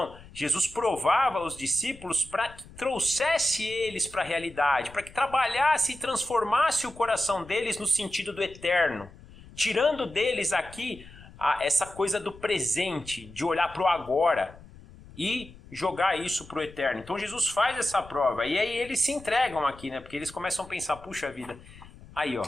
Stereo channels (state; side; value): noise; left; rumble, 20 dB below the sound